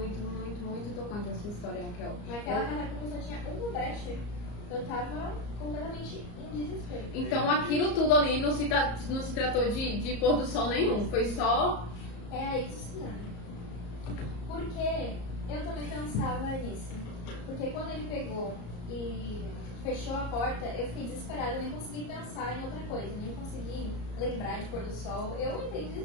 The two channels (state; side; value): late; right; 34 ms